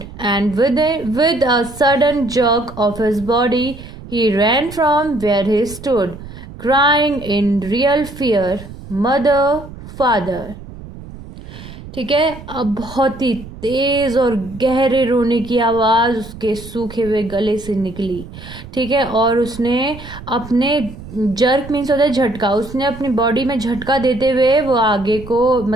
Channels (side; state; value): right; noise; rumble, 15 dB below the sound